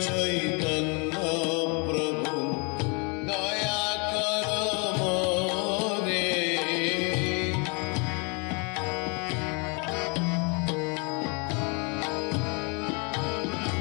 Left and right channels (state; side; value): quieter; right; 33.6 dB